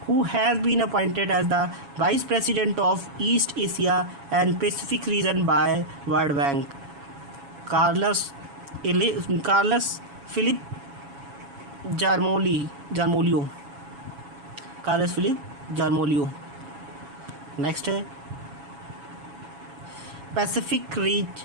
Who has been appointed as the Vice President of East Asia and Pacific Region by World Bank? Carlos Philip Jarmolio। Next है पैसिफिक रीच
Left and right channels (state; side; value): late; left; 7.2 ms